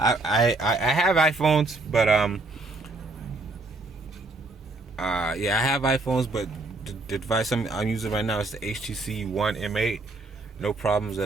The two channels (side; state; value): left; quieter; 3.1 dB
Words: iPhones, but I have iPhones, but the device I'm using right now is the HTC One M8. No problems